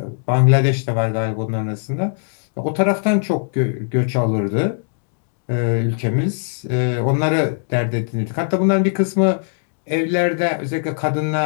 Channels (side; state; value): right; silent; digital silence